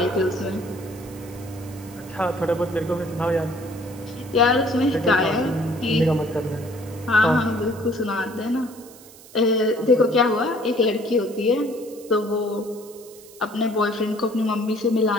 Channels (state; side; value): noise; right; hiss, 21 dB below the sound